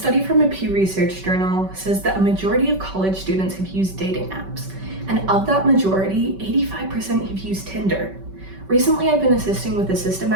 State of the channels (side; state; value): left; late; 5.2 ms